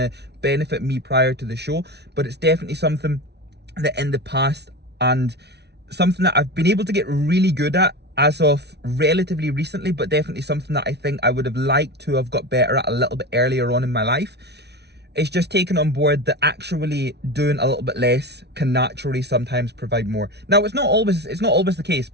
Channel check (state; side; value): late; left; 0.49 ms